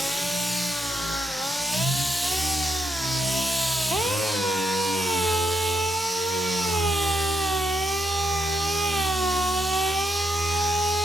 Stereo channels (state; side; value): normal; both; correlation 0.80